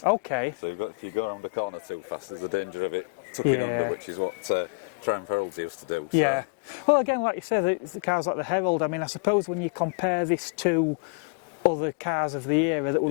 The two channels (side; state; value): right; quieter; 33.9 dB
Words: Okay. So if you go around a corner too fast, there's a danger of it tucking under, which is what Triumph Heralds used to do. So. Yeah. Well, again, like you said, the cars like the Herald, I mean, I suppose when you compare this to other cars of the era that